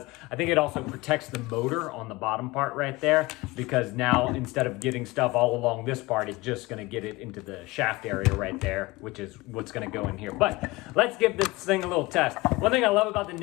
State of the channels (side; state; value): right; quieter; 21.5 dB